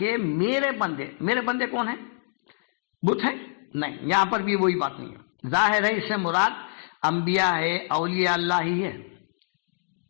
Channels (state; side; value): silent; right; 61 dB below the other